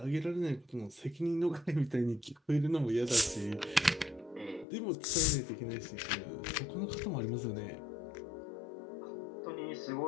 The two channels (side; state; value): right; drops out; at 4.7 s